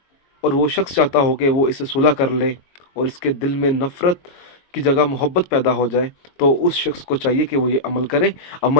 और वो शख्स चाहता हो कि वो इसे सुलह कर ले और इसके दिल में नफ़रत की जगह मोहब्बत पैदा हो जाए, तो उस शख्स को चाहिए कि वो ये अमल करे।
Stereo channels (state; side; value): late; right; 22 ms